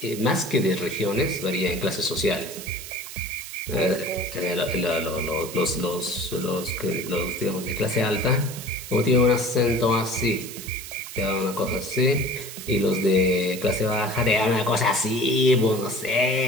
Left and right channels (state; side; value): noise; right; hiss, 11 dB below the sound